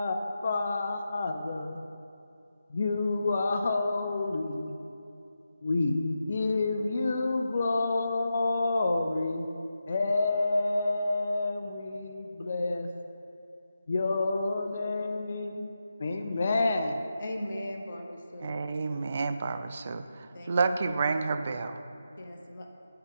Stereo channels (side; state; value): both; inverted; correlation -0.88